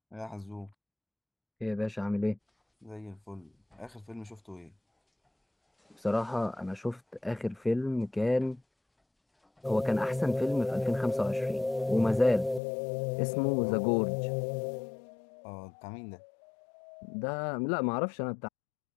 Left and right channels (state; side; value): drops out; right; at 12.6 s